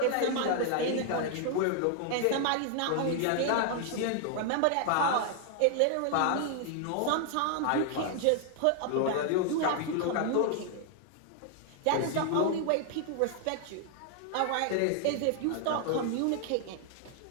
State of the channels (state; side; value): different; both; correlation 0.00